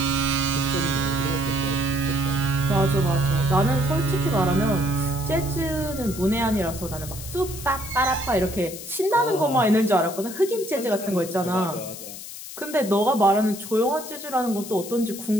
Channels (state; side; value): noise; left; hiss, 12 dB below the sound